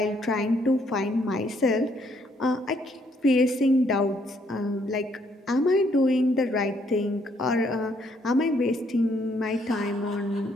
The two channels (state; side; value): normal; both; correlation 0.69